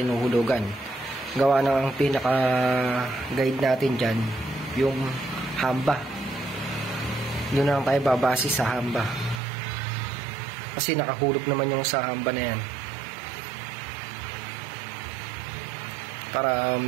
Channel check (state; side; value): drops out; left; at 9.4 s